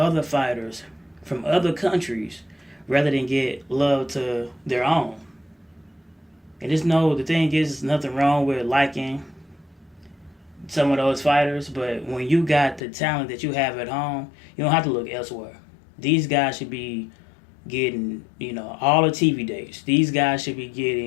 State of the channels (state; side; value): drops out; right; at 12.8 s